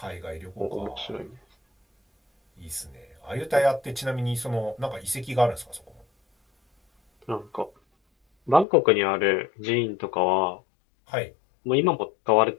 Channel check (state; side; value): drops out; right; at 8.7 s